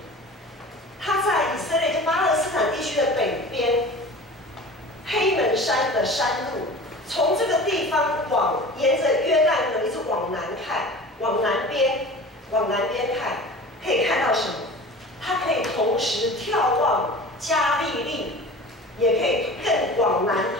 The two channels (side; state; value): both; normal; correlation 0.38